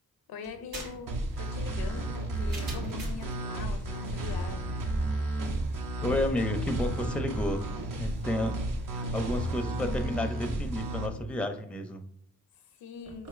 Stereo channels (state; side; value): normal; both; correlation 0.65